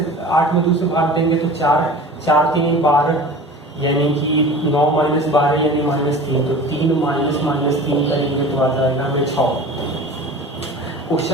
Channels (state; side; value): normal; both; correlation 0.39